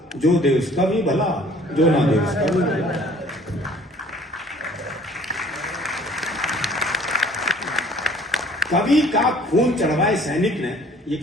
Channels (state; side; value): normal; both; correlation 0.55